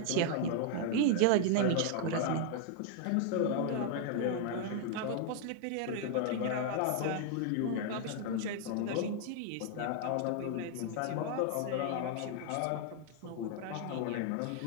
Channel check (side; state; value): both; different; correlation 0.00